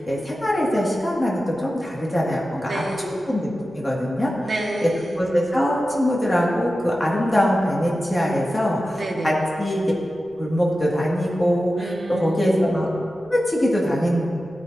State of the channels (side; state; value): right; noise; rumble, 29 dB below the sound